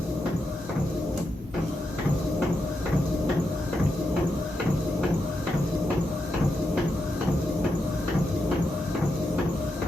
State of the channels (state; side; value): normal; both; correlation 0.85